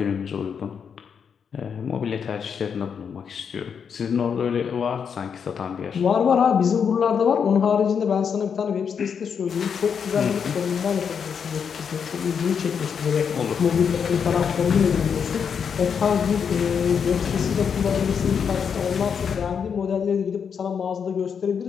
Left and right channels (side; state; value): right; quieter; 6.9 dB